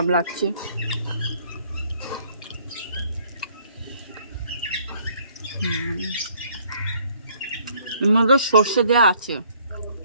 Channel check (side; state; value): both; inverted; correlation -0.62